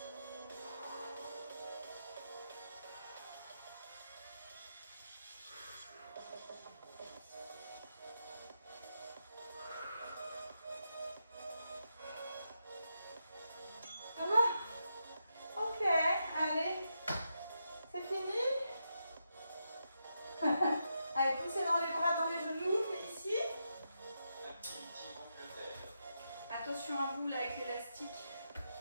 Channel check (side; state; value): both; inverted; correlation -0.85